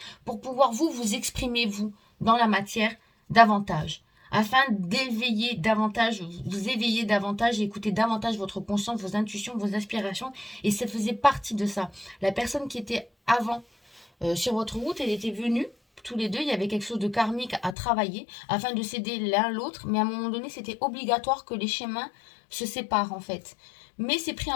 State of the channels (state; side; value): drops out; right; at 17.8 s